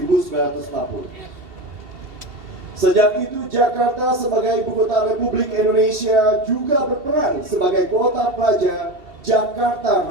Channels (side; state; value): left; late; 2.7 ms